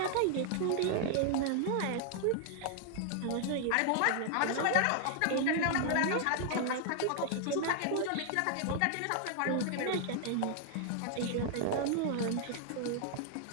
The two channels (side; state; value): both; different; correlation 0.00